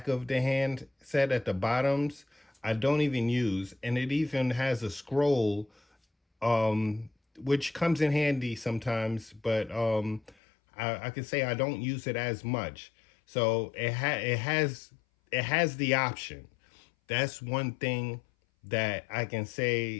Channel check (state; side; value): drops out; right; at 10.4 s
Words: of the hand set at the bottoms, I don't even use, and it even has a scroll, um, which comes in handy sometimes, but I can say I don't use it as much. So it has the option. That's one thing that I can